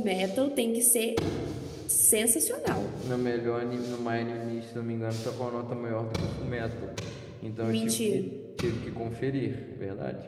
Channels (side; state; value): both; identical; correlation 1.00